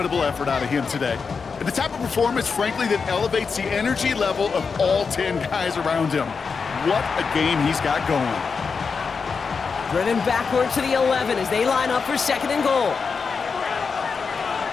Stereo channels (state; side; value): quieter; right; 5.3 dB